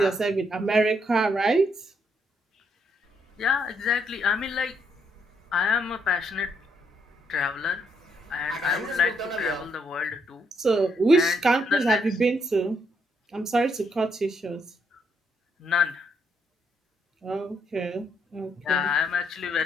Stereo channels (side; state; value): both; normal; correlation 0.75